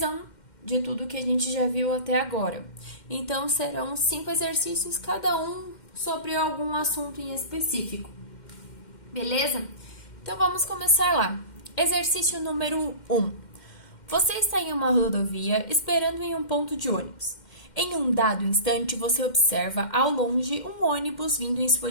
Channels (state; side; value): late; right; 2.1 ms